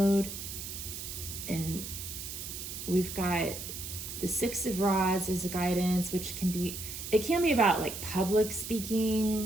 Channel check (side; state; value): right; noise; hiss, 8 dB below the sound